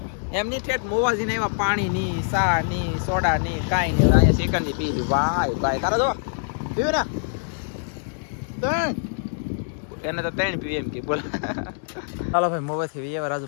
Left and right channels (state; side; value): silent; right; digital silence